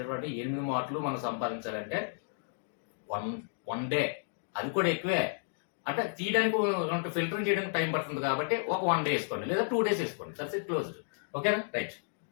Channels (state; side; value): silent; right; digital silence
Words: 8 మార్కులు మనం సంపాదించాలంటే వన్ డే, అది కూడా ఎక్కువే. అంటే తీయడానికి ఫిల్టరింగ్ చేయడానికి టైం పడుతుంది కాబట్టి ఒక 1 day వేసుకోండి లేదా 2 days వేసుకోండి, దట్స్ ఇట్ క్లోజ్డ్. ఓకేనా, రైట్.